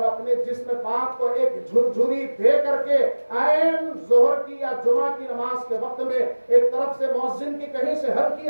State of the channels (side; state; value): both; inverted; correlation -1.00